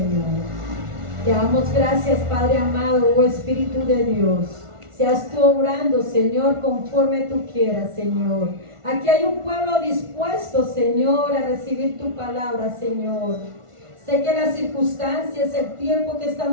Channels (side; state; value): left; late; 1.4 ms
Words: Te damos gracias, Padre amado, oh Espíritu de Dios. Seas tú obrando, Señor, conforme tú quieras, Señor. Aquí hay un pueblo dispuesto, Señor, a recibir tu palabra, Señor. Sé que las circunstancias, el tiempo que